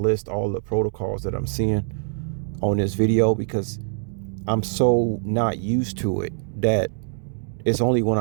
list all the protocols that I'm seeing on this video because I'm so not used to it that it's only when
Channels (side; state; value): left; silent; digital silence